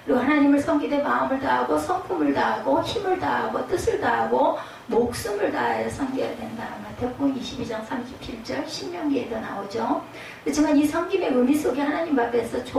그리고 하나님을 섬기되 마음을 다하고 성품을 다하고 힘을 다하고 뜻을 다하고 목숨을 다하여 섬겨야 된다. 마태복음 22장 37절 신명기에도 나오죠. 그렇지만 이 섬김의 의미 속에 하나님 앞에서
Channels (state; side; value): identical; both; correlation 1.00